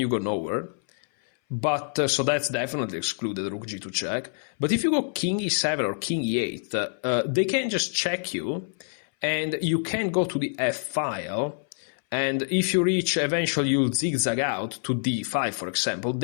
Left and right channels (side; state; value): right; silent; 60 dB below the other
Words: you go nowhere. But so that's definitely excluded, rook g2 check. But if you go king e7 or king e8, they can just check you, and you can go to the f file, and if you reach, eventually you'll zigzag out to d5, for example,